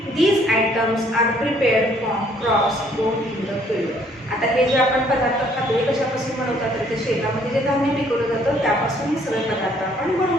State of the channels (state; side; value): normal; both; correlation 0.63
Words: These items are prepared from crops grown in the field. आता हे जे आपण पदार्थ खातो हे कशापासून बनवतात? तर ते शेतामध्ये जे धान्य पिकवलं जातं त्यापासून हे सगळे पदार्थ आपण बनवू